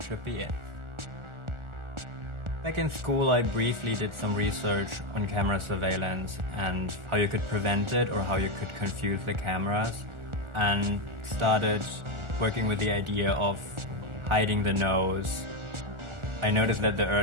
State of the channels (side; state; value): left; late; 1.4 ms